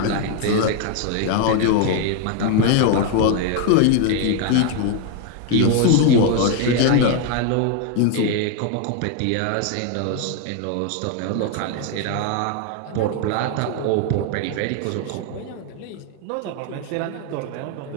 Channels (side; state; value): both; different; correlation 0.01